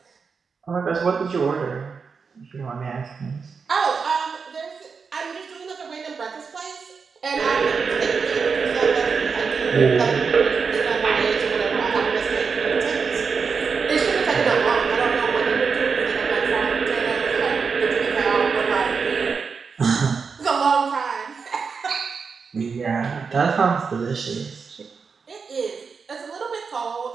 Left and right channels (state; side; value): quieter; left; 5.4 dB